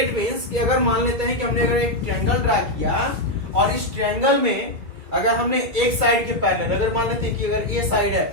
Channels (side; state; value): left; late; 2.3 ms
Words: means कि अगर मान लेते हैं कि हमने अगर एक ट्रायंगल ड्रा किया और इस ट्रायंगल में अगर हमने एक साइड के पैरेलल, अगर मान लेते हैं कि अगर ए साइड है